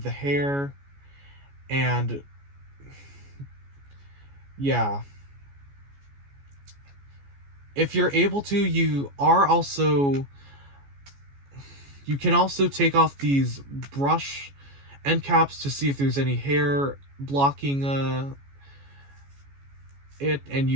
the hair. And yeah, if you're able to, you can also take off these brush end caps to see if there's any hair blocking it, and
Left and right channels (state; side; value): late; left; 14 ms